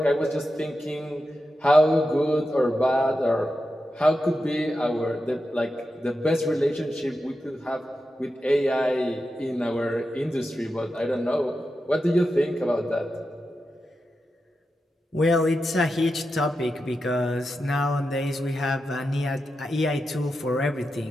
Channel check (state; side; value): normal; both; correlation 0.89